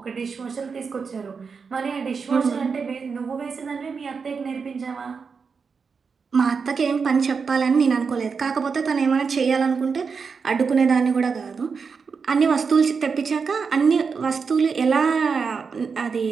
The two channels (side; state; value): left; quieter; 5.4 dB